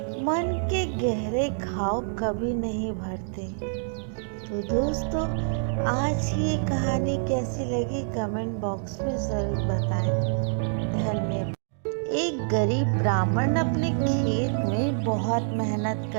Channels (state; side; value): silent; left; digital silence